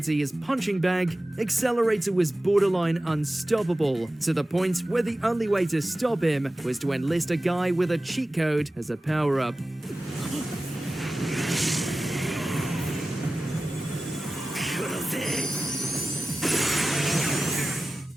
his punching bag, Accelerator was borderline unstoppable, to the point where the only way to stop him was to enlist a guy with a cheat code as a power-up.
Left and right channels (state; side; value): normal; both; correlation 0.96